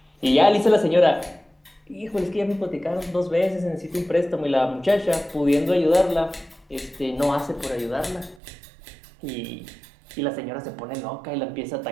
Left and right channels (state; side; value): drops out; left; at 8.4 s